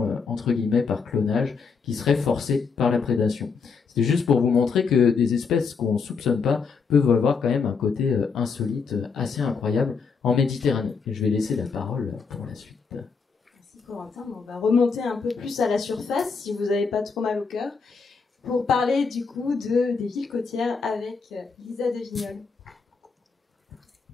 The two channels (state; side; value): quieter; right; 5.3 dB